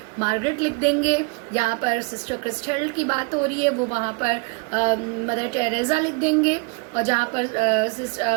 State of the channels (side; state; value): left; quieter; 30.8 dB